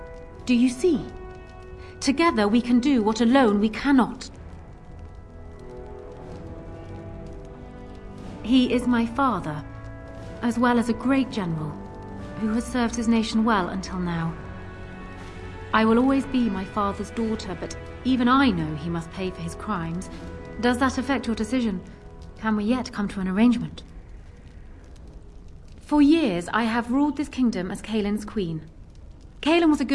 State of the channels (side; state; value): both; identical; correlation 1.00